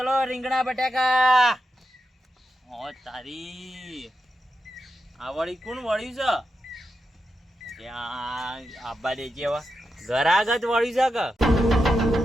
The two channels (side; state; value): both; normal; correlation 0.87